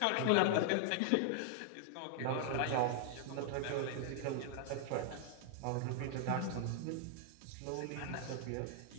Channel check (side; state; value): both; different; correlation 0.00